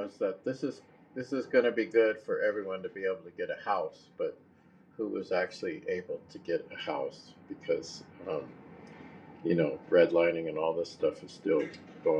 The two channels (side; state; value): both; identical; correlation 1.00